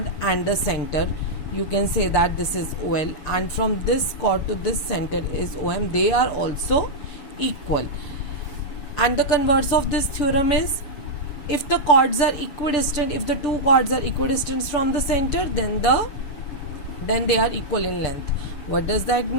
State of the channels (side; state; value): right; late; 7.0 ms